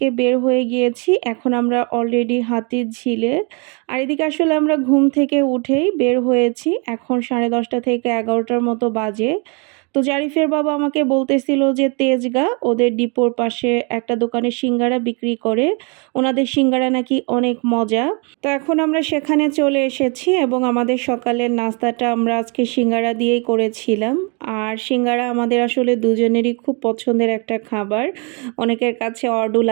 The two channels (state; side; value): quieter; left; 33.6 dB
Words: বের হয়ে গিয়েছি। এখন আমরা অলরেডি হাতির ঝিলে। আর এদিকে আসলে আমরা ঘুম থেকে উঠেই বের হয়েছি। এখন 10:30 থেকে 11টার মতো বাজে। তো জারিফের বাবা আমাকে বলতেছিল যে তেজগাঁ ওদের ডিপোর পাশে একটা দোকানে সিঙ্গারা বিক্রি করে, ওনাদের সিঙ্গারা নাকি অনেক মজা। তো এখন আমরা সেখানে চলে এসেছি এবং আমাদের সকালের নাস্তাটা আমরা আজকে সিঙ্গারা দিয়েই করেছিলাম। আর সিঙ্গারা আমাদের আসলে দুজনেরই খুব পছন্দের একটা খাবার। অনেকের কাছে অডও